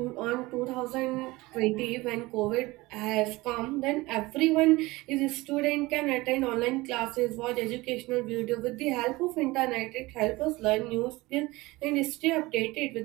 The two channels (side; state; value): left; quieter; 21.0 dB